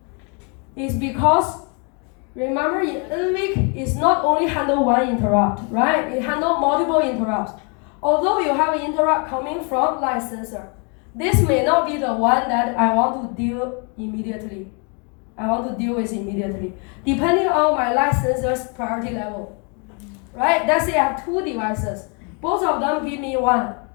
Is because remember in NVIC is not only handle 1 interrupt, right? It handle multiple interrupts. Although you have an interrupt coming from light sensor, this may not be the one that I want to deal immediately. Depending on my light sensor's priority level. Right? Let's say I have 2 devices. Both of them give me 1.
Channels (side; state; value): right; quieter; 36.0 dB